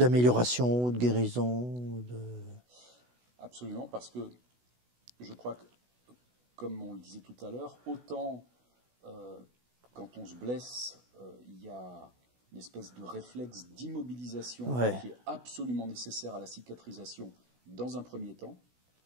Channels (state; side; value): late; left; 16 ms